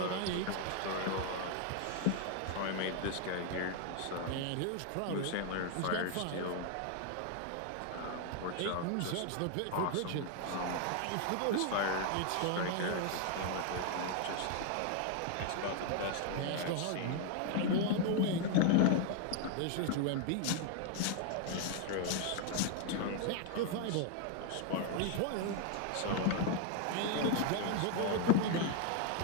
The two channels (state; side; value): different; both; correlation 0.00